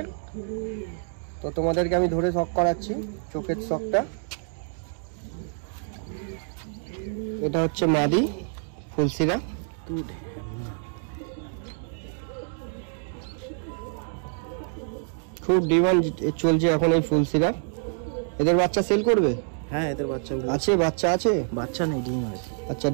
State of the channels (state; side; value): silent; left; digital silence